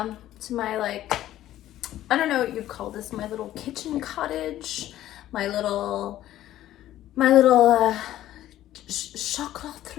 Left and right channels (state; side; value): quieter; right; 13.4 dB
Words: to my, like, I don't know what you'd call this, my little kitchen cottage, my little